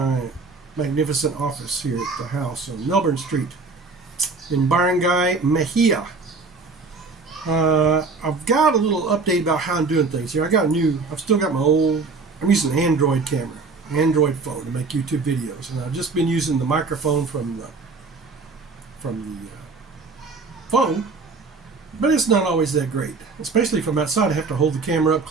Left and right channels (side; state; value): left; quieter; 4.2 dB